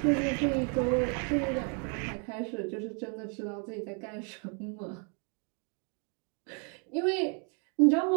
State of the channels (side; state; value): left; quieter; 39.2 dB